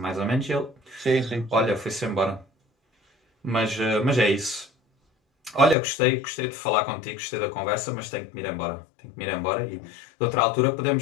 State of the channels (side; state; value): right; drops out; at 5.8 s